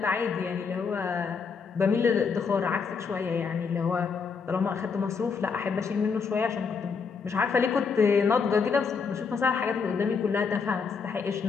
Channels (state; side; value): quieter; right; 5.5 dB